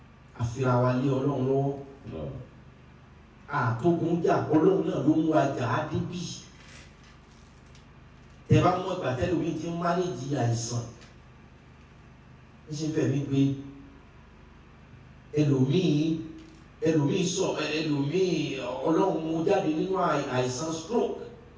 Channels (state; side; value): identical; both; correlation 1.00